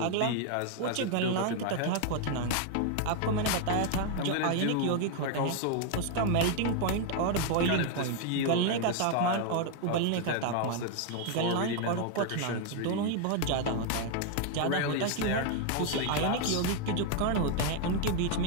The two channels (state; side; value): different; both; correlation 0.00